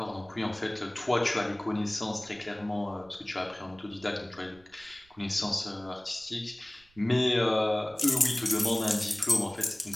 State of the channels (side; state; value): right; noise; rumble, 29 dB below the sound